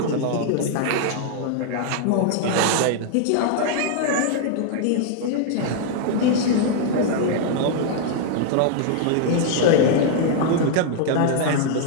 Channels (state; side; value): different; both; correlation -0.01